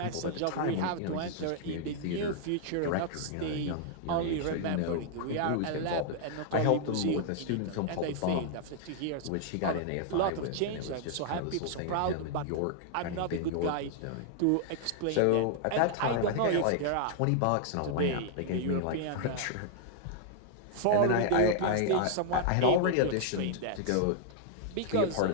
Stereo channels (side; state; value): both; different; correlation -0.01